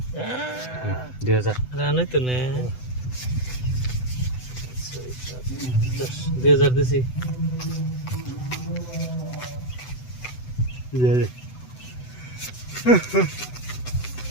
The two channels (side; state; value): right; late; 8.0 ms